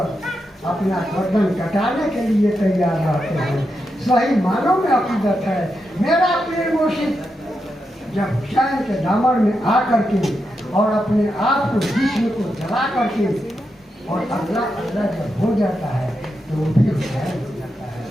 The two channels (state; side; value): normal; both; correlation 0.86